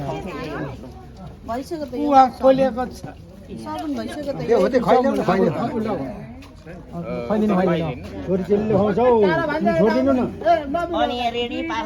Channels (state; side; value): identical; both; correlation 1.00